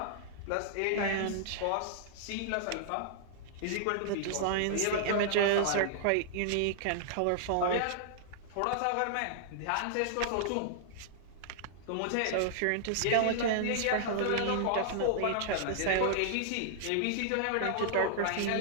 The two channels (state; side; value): different; both; correlation -0.01